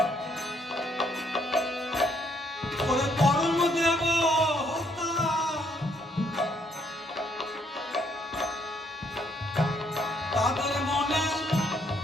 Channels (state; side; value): normal; both; correlation 0.69